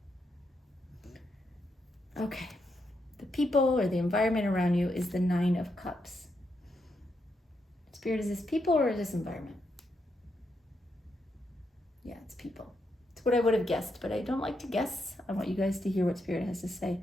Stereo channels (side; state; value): both; normal; correlation 0.81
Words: Okay. The people or the environment around you is the 9 of Cups. Spirit, is this people or is this environment? Yeah, it's people. It's what I would have guessed, but I don't like to guess. I want you guys to hear what Spirit has to say.